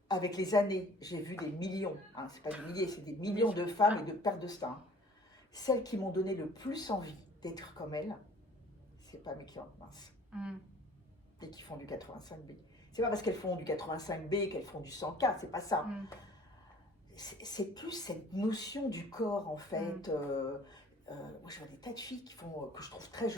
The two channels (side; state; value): both; normal; correlation 0.51